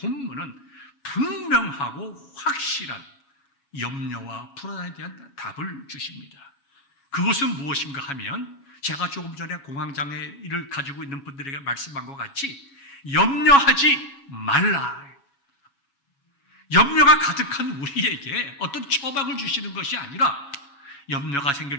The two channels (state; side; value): late; right; 7.2 ms